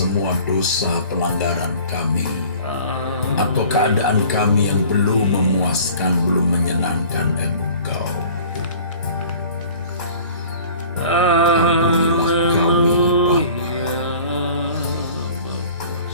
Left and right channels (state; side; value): inverted; both; correlation -0.47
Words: dosa pelanggaran kami, atau keadaan kami yang belum memuaskan, belum menyenangkan Engkau. Ampunilah kami, Bapa.